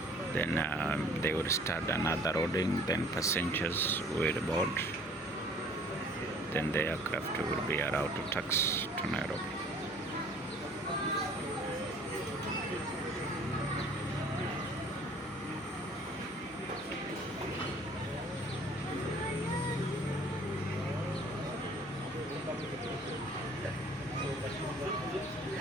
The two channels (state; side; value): normal; both; correlation 0.53